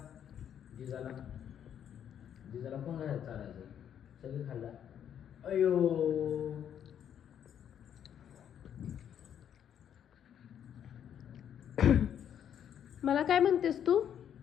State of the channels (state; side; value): quieter; right; 9.3 dB